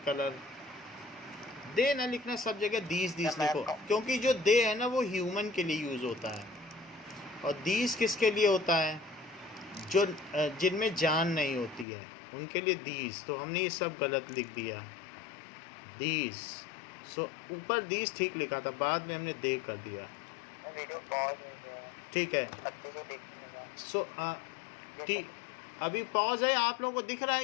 कलर। दे ना लिखना सब जगह, दीज लिखो, क्योंकि जो दे है ना वो ह्यूमन के लिए यूज़ होता है, और दीज किसके लिए होता है, जो जिनमें जान नहीं होती है उनके लिए दीज। तो हमने ये सब गलत लिख दिया, दीज। सो ऊपर दीज ठीक लिखा था, बाद में हमने दे कर दिया। वीडियो पॉज हो गया, ठीक है, अच्छे से देखिएगा। सो ठीक, अभी पॉज है। आप लोगों को दिख रहा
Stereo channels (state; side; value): drops out; right; at 11.9 s